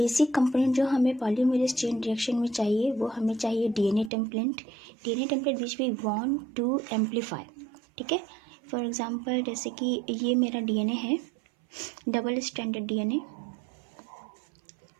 component जो हमें polymerase chain reaction में चाहिए वो हमें चाहिए DNA template which we want to amplify. ठीक है, फॉर एग्जांपल जैसे कि ये मेरा डीएनए है, डबल स्ट्रैंडेड डीएनए,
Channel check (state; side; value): drops out; left; at 4.1 s